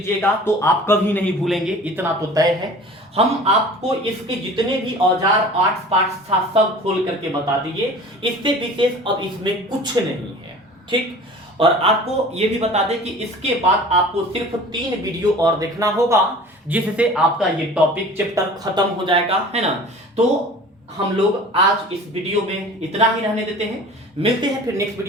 तो आप कभी नहीं भूलेंगे, इतना तो तय है। हम आपको इसके जितने भी औजार आर्ट्स पार्ट्स था सब खोल करके बता दिए, इससे विशेष अब इसमें कुछ नहीं है, ठीक। और आपको ये भी बता दें कि इसके बाद आपको सिर्फ 3 वीडियो और देखना होगा, जिससे आपका ये टॉपिक चैप्टर खत्म हो जाएगा, है ना। तो हम लोग आज इस वीडियो में इतना ही रहने देते हैं, मिलते हैं फिर नेक्स्ट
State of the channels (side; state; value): both; normal; correlation 0.43